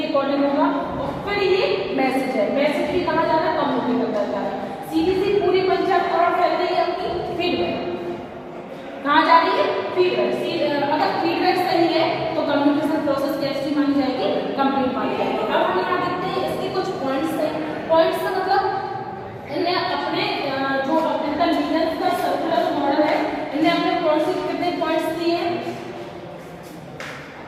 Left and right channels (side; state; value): both; identical; correlation 1.00